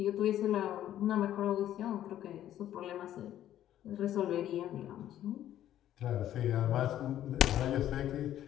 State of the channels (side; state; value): right; quieter; 12.0 dB